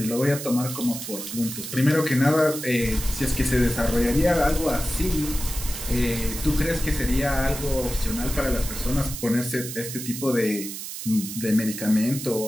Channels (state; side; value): noise; right; hiss, 8 dB below the sound